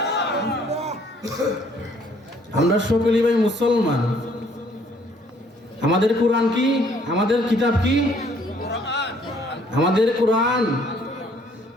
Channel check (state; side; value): normal; both; correlation 0.63